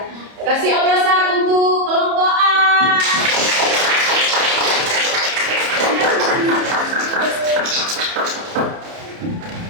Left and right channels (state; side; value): late; left; 30 ms